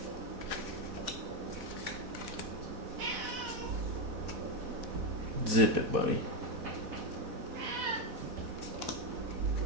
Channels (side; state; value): left; late; 4.1 ms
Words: Zip it, buddy.